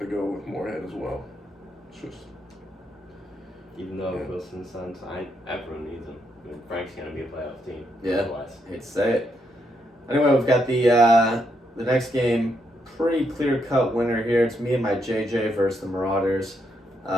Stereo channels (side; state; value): both; normal; correlation 0.78